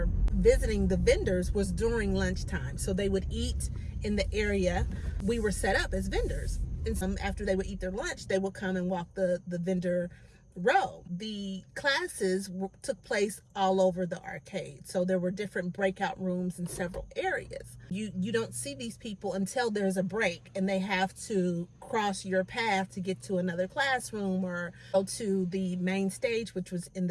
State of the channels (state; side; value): identical; both; correlation 1.00